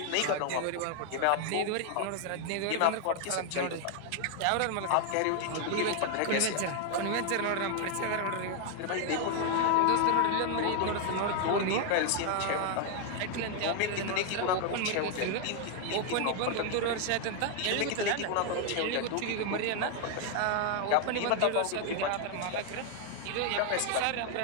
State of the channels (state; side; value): different; both; correlation 0.00